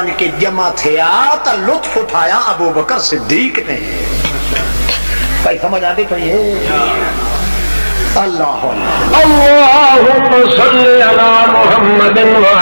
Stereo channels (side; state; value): both; inverted; correlation -1.00